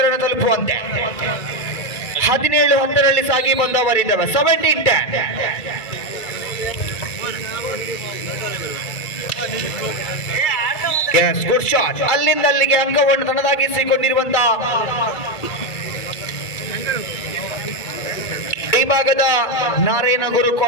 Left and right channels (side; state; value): right; late; 2.3 ms